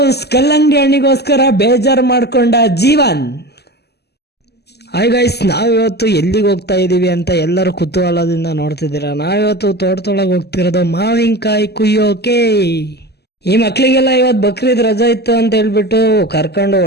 ಕಲ್ಲಂಗಡಿ ಹಣ್ಣಿಗೋಸ್ಕರ ಬೇಜಾರು ಮಾಡ್ಕೊಂಡ ಜೀವನ್. ಹಾಯ್ ಗೈಸ್, ನಾವಿವತ್ತು ಎಲ್ಲಿಗೆ ಹೋಗ್ತಾ ಇದೀವಿ ಅಂತ ಎಲ್ಲರೂ ಕುತೂಹಲದಿಂದ ನೋಡ್ತಿದ್ದೀರಾ. ನಾವಿವತ್ತು ತೋಟದೊಳಗೆ ಹೋಗ್ತಿರೋದು ಮಾವಿನಕಾಯಿ ಕುಯ್ಯೋಕೆ. ಈ ಮಕ್ಳಿಗೆಲ್ಲ ಇವತ್ತು ಬಕ್ರೀದ್ ರಜಾ ಇತ್ತು ಅಂತ ಹೇಳ್ಬಿಟ್ಟು ಕರ್ಕೊಂಡು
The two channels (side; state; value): right; late; 0.47 ms